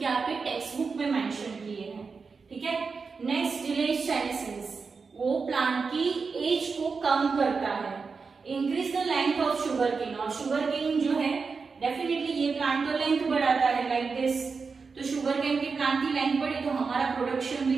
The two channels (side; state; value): left; quieter; 4.9 dB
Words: आपके टेक्स्ट बुक में मेंशन किए हैं। ठीक है, नेक्स्ट डिलेज सेनेसेंस, वो प्लांट की एज को कम करता है। Increase the length of sugarcane, और शुगर केन जो है डेफिनेटली ये प्लांट तो लेंथ बढ़ाता है लाइक दिस, तो शुगर केन के प्लांट की लेंथ बढ़ी तो हमारा प्रोडक्शन भी